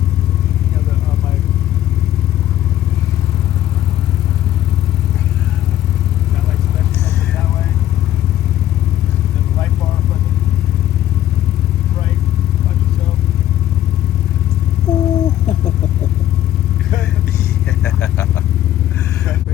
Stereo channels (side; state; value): right; quieter; 12.8 dB